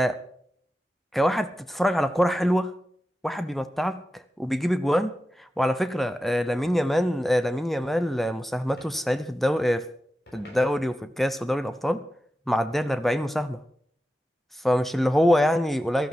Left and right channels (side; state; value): both; normal; correlation 0.92